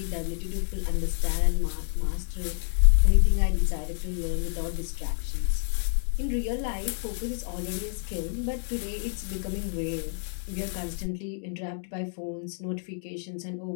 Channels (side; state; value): right; silent; digital silence